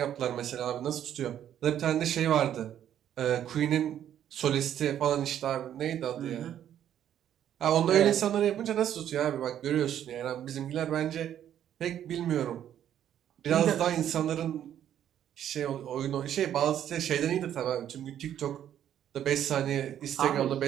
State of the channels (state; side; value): quieter; left; 10.5 dB